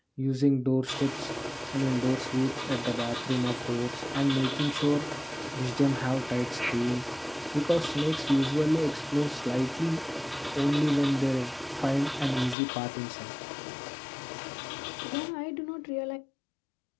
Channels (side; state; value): right; drops out; at 12.6 s